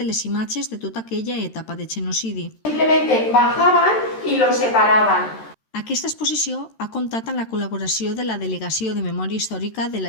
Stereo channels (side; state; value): right; late; 13 ms